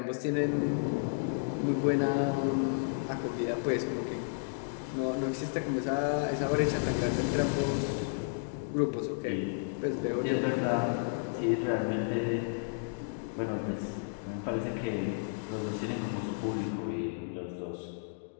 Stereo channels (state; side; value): silent; right; digital silence